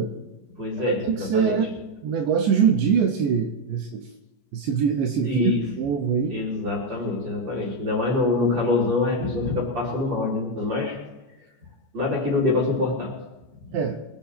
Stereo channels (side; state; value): left; late; 14 ms